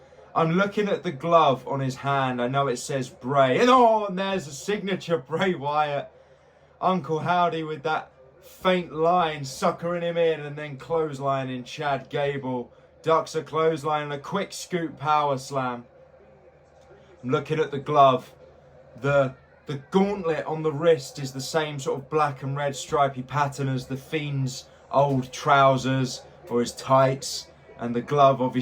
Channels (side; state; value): both; identical; correlation 1.00